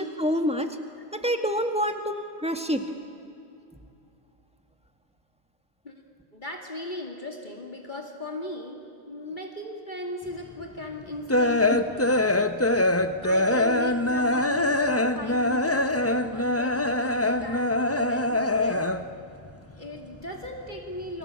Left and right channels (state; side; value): normal; both; correlation -0.20